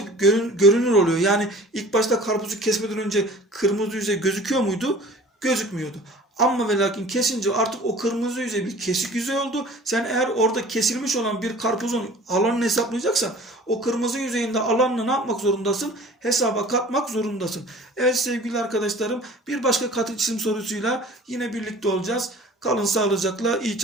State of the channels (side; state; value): both; normal; correlation 0.45